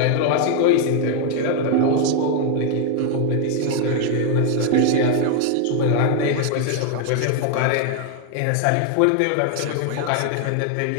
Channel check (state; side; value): different; both; correlation 0.00